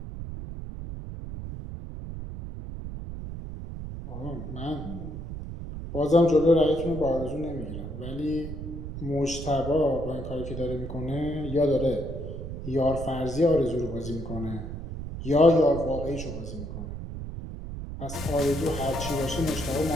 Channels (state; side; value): noise; right; rumble, 8 dB below the sound